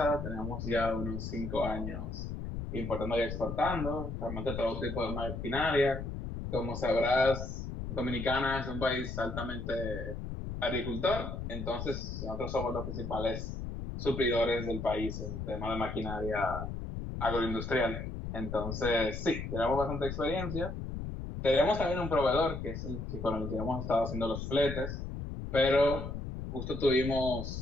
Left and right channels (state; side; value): noise; left; rumble, 6 dB below the sound